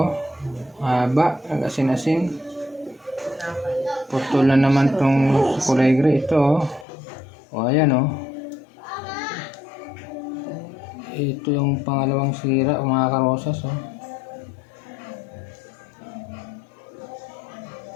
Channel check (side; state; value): right; drops out; at 6.9 s